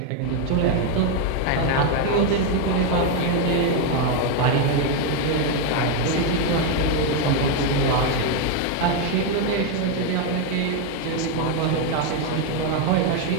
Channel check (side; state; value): both; different; correlation 0.01